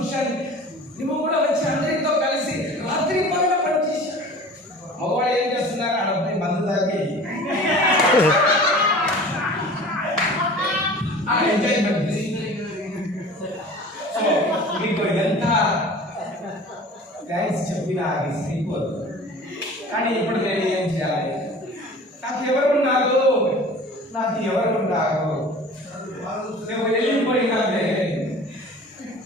నువ్వు కూడా వచ్చి అందరితో కలిసి రాత్రి పగల పనిచేశావు. మగవాడు ఏం చేస్తున్నారు? అడపై మందు తాగి ఎంజాయ్మెంట్. మీకు ఎంత థ్యాంక్స్ చెప్పినా అది సరిపోదు. కానీ ఇప్పుడు నేను ఏం చేయాలి? నాకు ఎవరున్నారు? నువ్వు వెళ్ళిపోయినావే.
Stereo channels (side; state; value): both; normal; correlation 0.42